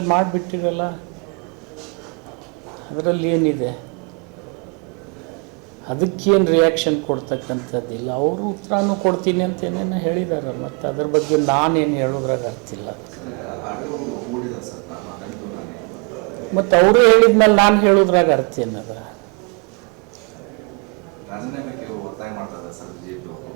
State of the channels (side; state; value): left; quieter; 35.6 dB